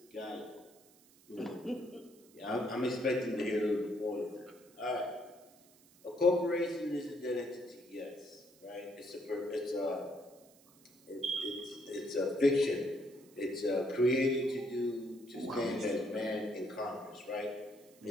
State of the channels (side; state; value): right; noise; hiss, 27 dB below the sound